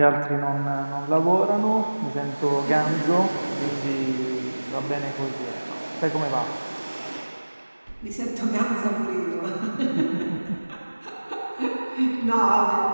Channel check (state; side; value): inverted; both; correlation -1.00